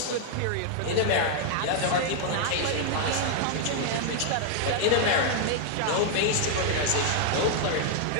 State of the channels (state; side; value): different; both; correlation 0.00